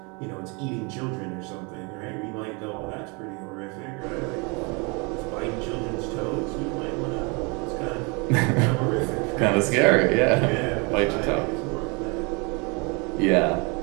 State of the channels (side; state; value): left; quieter; 30.7 dB